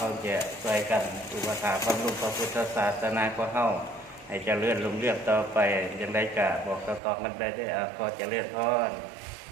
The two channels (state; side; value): drops out; left; at 7.0 s